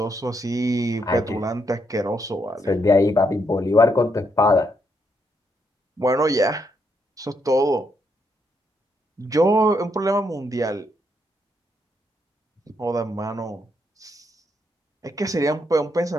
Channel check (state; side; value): normal; both; correlation 0.77